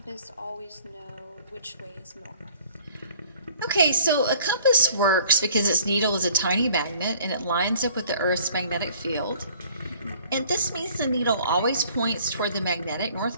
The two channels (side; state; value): both; inverted; correlation -0.55